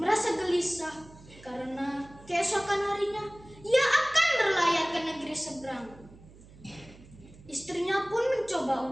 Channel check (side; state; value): right; noise; hum, 22 dB below the sound